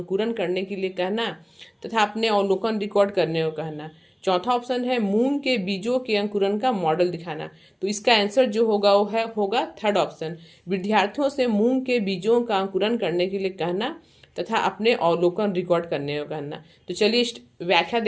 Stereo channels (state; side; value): identical; both; correlation 1.00